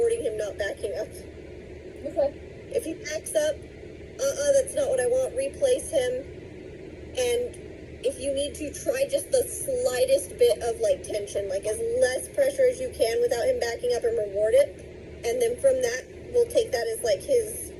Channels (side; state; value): both; identical; correlation 1.00